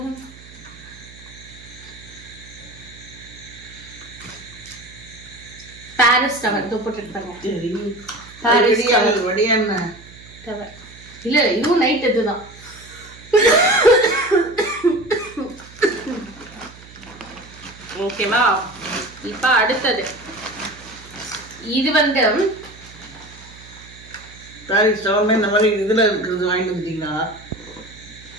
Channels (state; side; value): noise; right; hum, 20 dB below the sound